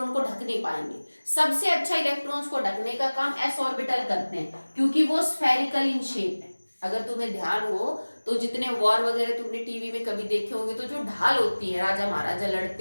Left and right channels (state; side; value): inverted; both; correlation -1.00